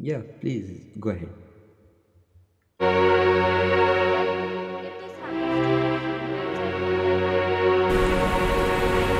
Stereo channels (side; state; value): both; identical; correlation 1.00